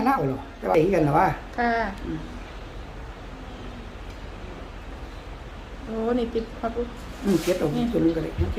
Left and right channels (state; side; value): identical; both; correlation 1.00